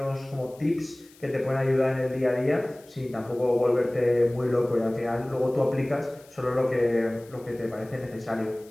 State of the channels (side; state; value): left; noise; hiss, 26 dB below the sound